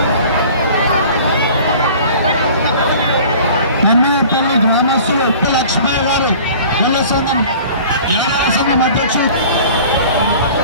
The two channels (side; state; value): both; inverted; correlation -0.45